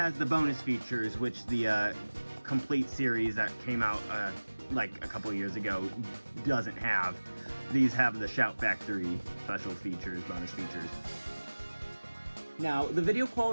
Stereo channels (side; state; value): both; inverted; correlation -1.00